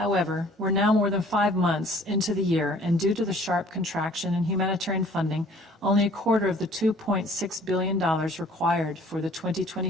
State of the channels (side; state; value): both; normal; correlation 0.53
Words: we're now more than 5 months into the year, and due to the sharp contraction in humanitarian funding, only a quarter of the $2.6 billion required for the